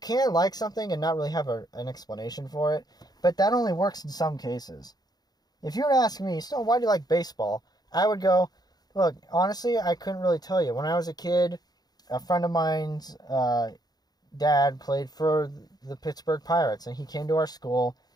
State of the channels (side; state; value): right; late; 0.19 ms